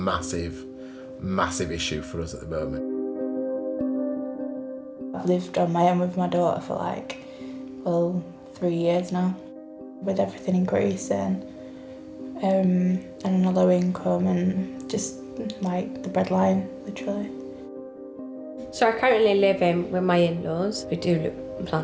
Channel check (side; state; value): both; identical; correlation 1.00